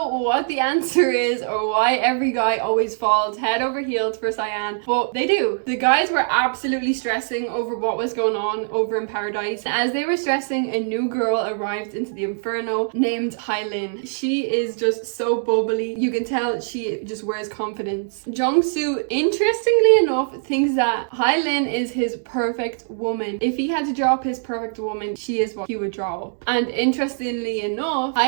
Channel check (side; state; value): left; silent; digital silence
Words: what the answer is or why every guy always falls head over heels for Sayan, but they do. The guys were absolutely stressing over what was going on over in paradise. As they were stressing, a new girl arrived into the Inferno named Hailin. She is just so bubbly. You can tell she just wears confidence. Jung-Soo, interestingly enough, thinks that Hailin is his perfect woman. If he had to draw up his perfect woman, she is what he would draw up. And interestingly enough,